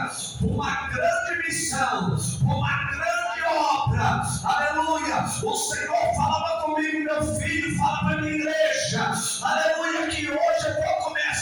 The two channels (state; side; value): identical; both; correlation 1.00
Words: uma grande missão, uma grande obra, aleluia. O Senhor falava comigo, meu filho, fala para a minha igreja, aleluia, que hoje eu vou